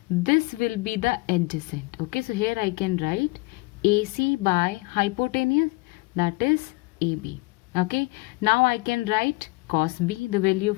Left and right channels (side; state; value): right; quieter; 24.5 dB